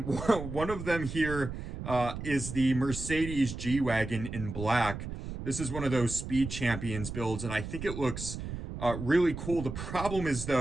one of them here is the Mercedes G-Wagon in black. This is one of those Speed Champions builds, and I think it looks really cool. The problem is,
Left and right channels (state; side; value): noise; right; rumble, 7 dB below the sound